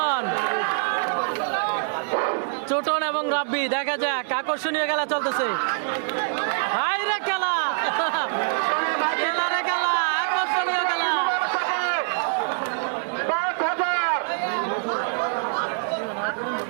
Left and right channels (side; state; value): left; silent; digital silence